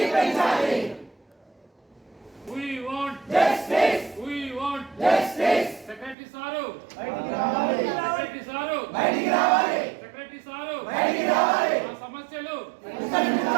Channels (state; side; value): drops out; left; at 6.2 s